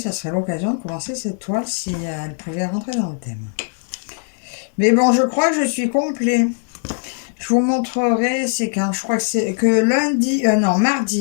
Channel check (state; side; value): silent; right; 60 dB below the other